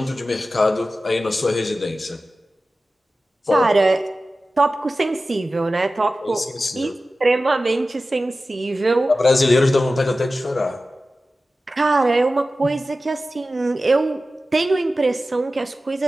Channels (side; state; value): both; normal; correlation 0.95